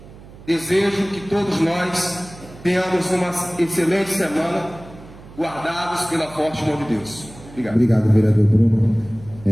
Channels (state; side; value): noise; right; hum, 19 dB below the sound